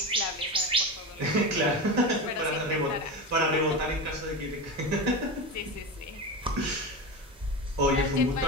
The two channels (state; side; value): normal; both; correlation 0.21